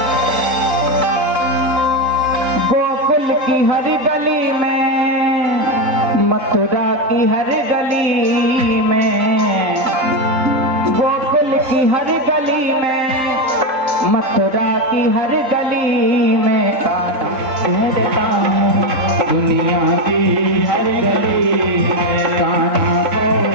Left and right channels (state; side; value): late; left; 3.8 ms